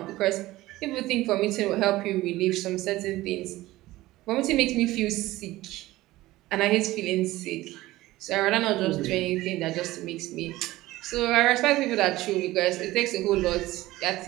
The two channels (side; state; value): left; quieter; 17.5 dB